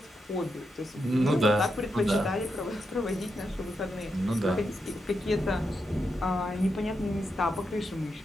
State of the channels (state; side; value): normal; both; correlation 0.84